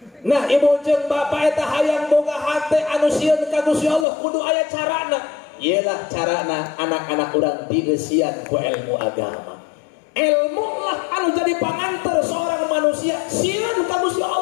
Nah ibu jeung bapak eta hayang boga hate anu sieun ka Gusti Allah kudu aya carana. Iyalah carana anak-anak urang dieusian ku ilmu agama. Ilmu lah anu jadi pangantar seorang manusia sieun ka Gusti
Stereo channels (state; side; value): drops out; right; at 4.0 s